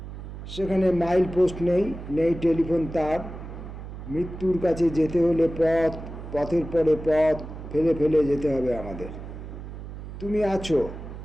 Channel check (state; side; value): noise; right; hum, 11 dB below the sound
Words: সেখানে মাইল পোস্ট নেই, নেই টেলিফোন তার। মৃত্যুর কাছে যেতে হলে পথ, পথের পরে পথ ফেলে ফেলে যেতে হবে আমাদের। তুমি আছো,